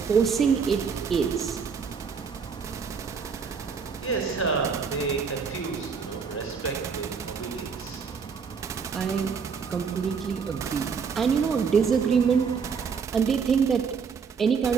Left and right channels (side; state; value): left; quieter; 5.9 dB